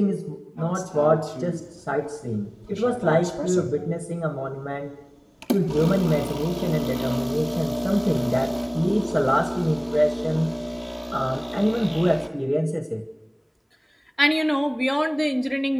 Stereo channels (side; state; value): both; identical; correlation 1.00